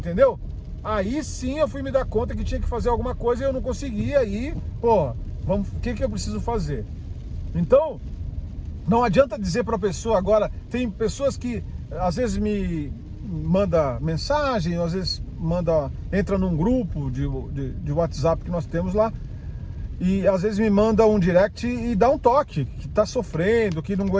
Aí sim eu fui me dar conta que tinha que fazer alguma coisa e eu não conseguia. Aí, o que eu preciso fazer? Então, não adianta dizer para a pessoa agora. Tem pessoas que às vezes me manda mensagem, às vezes entra num grupo de WhatsApp que nós temos lá, e às vezes me manda um direct e dá um toque, que tá sofrendo, que não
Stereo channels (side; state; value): both; identical; correlation 1.00